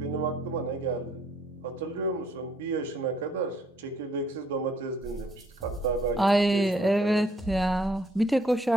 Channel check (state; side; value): normal; both; correlation 0.65